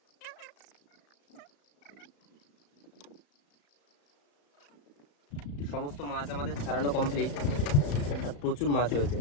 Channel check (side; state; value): right; late; 35 ms